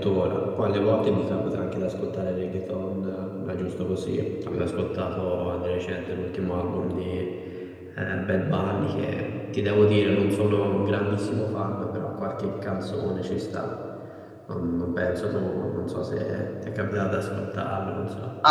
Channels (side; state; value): both; identical; correlation 1.00